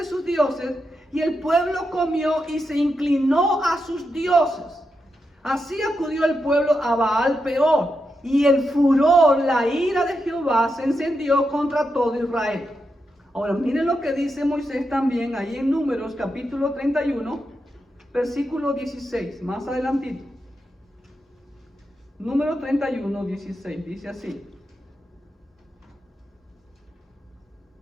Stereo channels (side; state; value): both; normal; correlation 0.86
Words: sus dioses, y el pueblo comió y se inclinó a sus dioses. Así acudió el pueblo a Baal Peor, y el furor, la ira de Jehová se encendió contra todo Israel. Ahora miren lo que dice Moisés también ahí en Números capítulo 31, versículo 16, más adelantito. Número 31, 16, dice así.